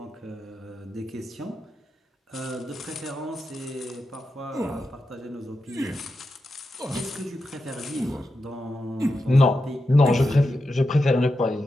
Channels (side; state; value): both; normal; correlation 0.88